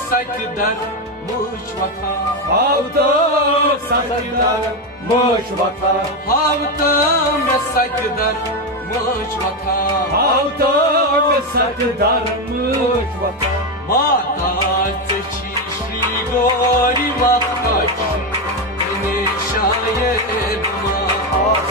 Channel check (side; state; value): both; normal; correlation 0.10